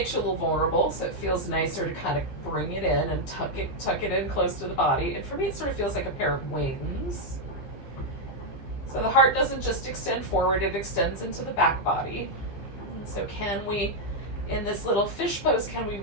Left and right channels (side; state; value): right; late; 15 ms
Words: you a little vulnerable, so it feels nicer to kind of bring it in and tuck it in close to the body. And for me, it sort of feels like a pair of wings. So the heart doesn't just extend forward, it extends into the back body. And so can we, in this little fish pose, can we